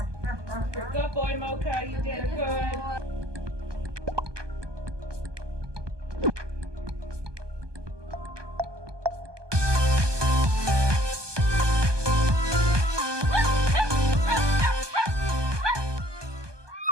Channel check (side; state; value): left; late; 1.2 ms